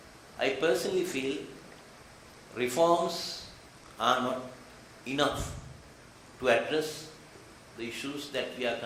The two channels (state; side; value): identical; both; correlation 1.00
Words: I personally feel reforms are not enough to address the issues that we are